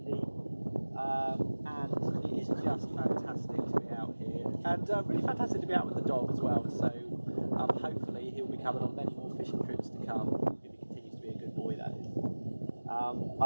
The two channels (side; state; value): both; inverted; correlation -1.00